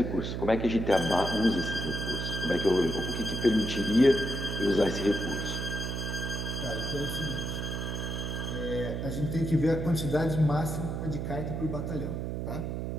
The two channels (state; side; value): noise; right; hum, 3 dB below the sound